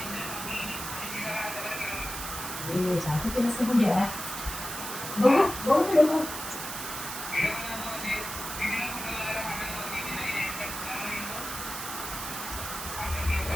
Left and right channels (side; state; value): right; noise; hiss, 7 dB below the sound